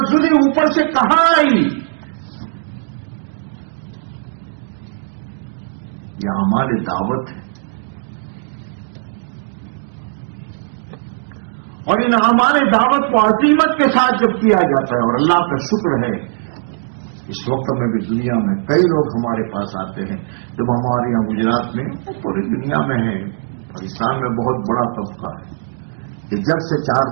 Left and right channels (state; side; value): silent; left; digital silence